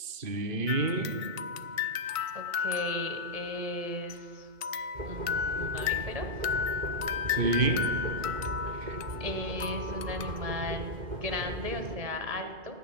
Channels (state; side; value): late; left; 2.2 ms